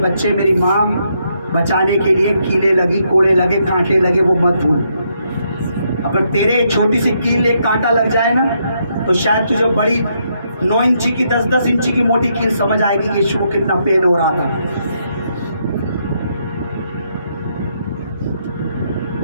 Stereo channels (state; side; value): inverted; both; correlation -0.76